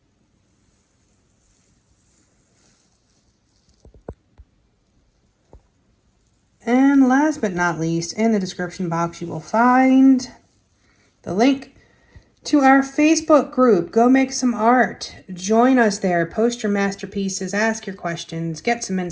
And last but not least, in the description box you will find the link to our Facebook group. Go make some art. Join us there. Post your masterpieces. Ask your questions. Get some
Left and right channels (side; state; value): both; identical; correlation 1.00